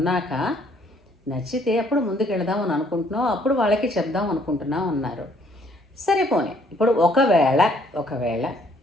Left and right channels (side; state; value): both; normal; correlation 0.64